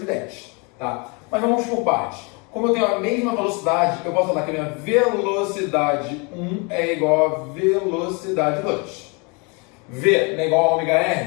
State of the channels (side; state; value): right; quieter; 30.3 dB